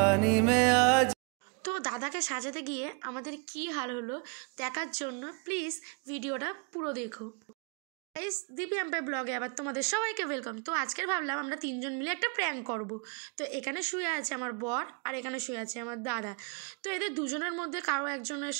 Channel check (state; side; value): quieter; left; 34.2 dB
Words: में आज। তো দাদাকে সাজাতে গিয়ে আমাদের কি হাল হলো দেখার জন্য প্লিজ ভিডিওটা পুরো দেখো। গাইস, দীপি এম্পায়ার ব্লগে আবার তোমাদের সবাইকে ওয়েলকাম। তো আজকের ভাবলাম আমরা তিনজন মিলে একটা প্র্যাঙ্ক করব। তো এখানে শুয়ে আছে আমার বর আর এখানে শুয়ে আছে আমার দাদা। তো এদের দুজনের মধ্যে কারো একজনের